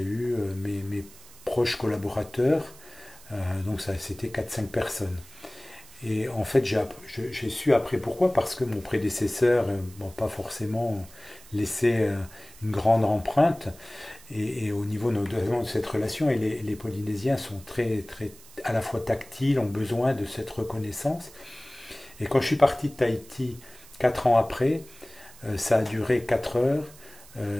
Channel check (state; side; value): noise; right; hiss, 21 dB below the sound